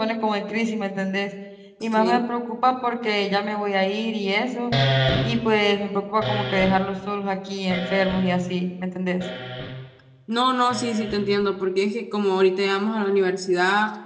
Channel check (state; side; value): identical; both; correlation 1.00